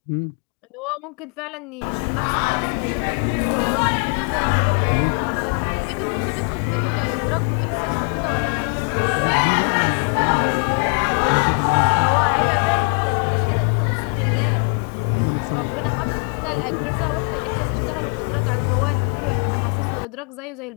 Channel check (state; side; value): quieter; right; 39.2 dB